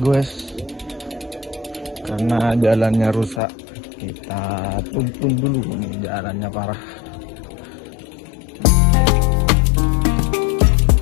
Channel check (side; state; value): right; drops out; at 3.4 s